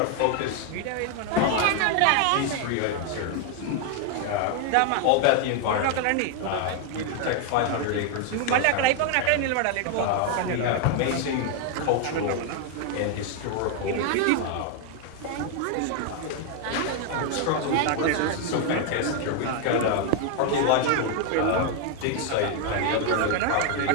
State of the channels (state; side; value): different; both; correlation 0.00